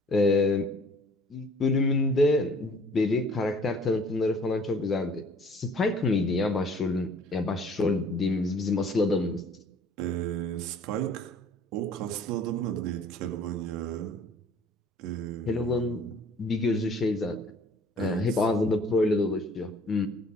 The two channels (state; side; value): normal; both; correlation 0.54